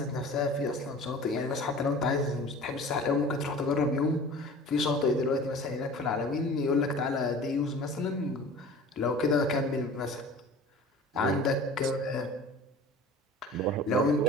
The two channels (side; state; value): both; normal; correlation 0.41